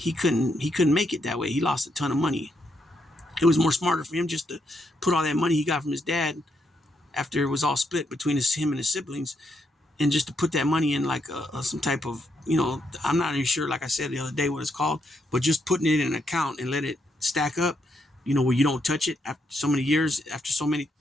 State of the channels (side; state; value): both; normal; correlation 0.78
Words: couldn't make it that way. He lost a ton of money. It was more smarter for him just to put all that money he got from his dad after it was all split between him and his siblings, and just to put that money in like some type of, I'm not even sure, like I said the other day, what it's called, but just putting it in an account and let it stack up, where you don't touch it after so many years, after so